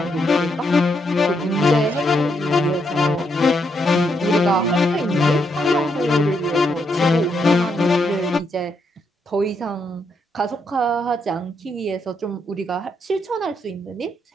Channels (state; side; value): normal; both; correlation 0.78